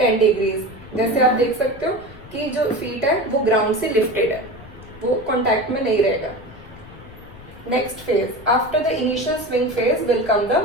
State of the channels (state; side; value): noise; left; rumble, 19 dB below the sound